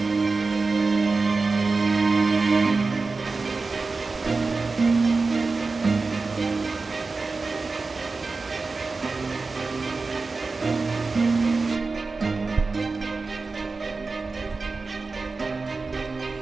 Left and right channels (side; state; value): left; quieter; 4.0 dB